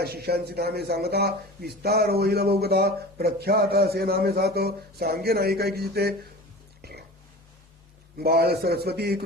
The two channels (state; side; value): normal; both; correlation 0.36